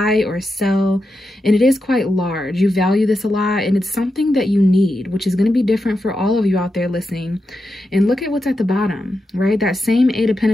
or sell. And it is quite large. You value this a lot, and it's something that you need, which is going to be different for all of you out there listening. And look at what's at the bottom, right? That same Eight of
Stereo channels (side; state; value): both; normal; correlation 0.88